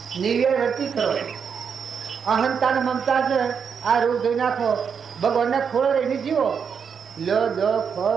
નિર્વ્યય રતી કરો. અહંતા મમતા છે આ રોગ ધોઈ નાખો, ભગવાનને ખોળો રહીને જીવો. લો દો ખો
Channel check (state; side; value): quieter; left; 6.7 dB